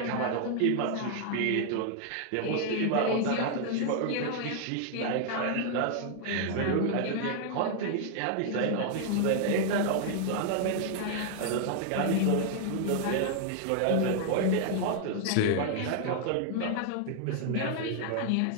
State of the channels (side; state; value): both; different; correlation 0.00